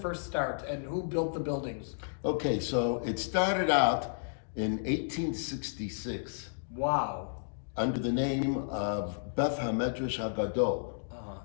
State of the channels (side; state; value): right; silent; digital silence